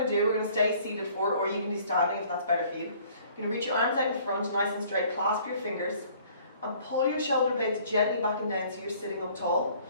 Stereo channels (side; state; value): both; inverted; correlation -0.56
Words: to do, we're going to stay seated forward, or you can do standing if that's better for you. You're going to reach your arms out in front, nice and straight, clasp your fingers, and pull your shoulder blades gently back and down so you're sitting up tall.